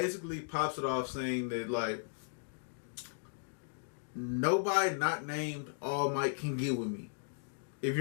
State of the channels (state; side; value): silent; right; digital silence